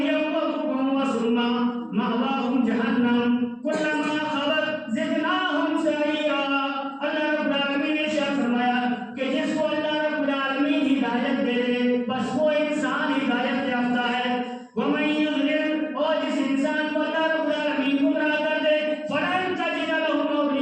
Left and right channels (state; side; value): identical; both; correlation 1.00